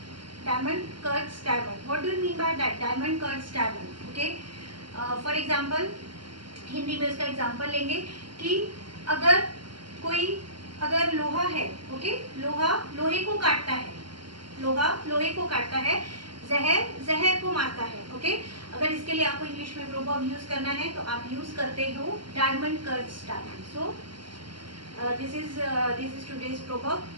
Diamond cuts diamond. What do you mean by that? Diamond cuts diamond. Okay. For example, Hindi में इसका example लेंगे कि अगर लोहा है, okay, लोहा लोहे को काटता है, लोहा लोहे को काटता है, जहर जहर को मारता है, ओके। अगर इसके लिए आपको इंग्लिश में प्रोवर्ब यूज करना है तो आप यूज करते हो diamond cuts diamond. So this is today's proverb.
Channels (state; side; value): late; left; 0.72 ms